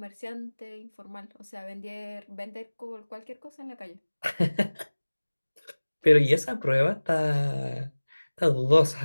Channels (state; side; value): inverted; both; correlation -1.00